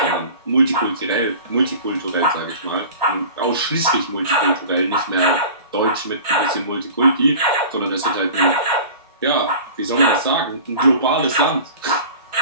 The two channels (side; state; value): both; inverted; correlation -0.40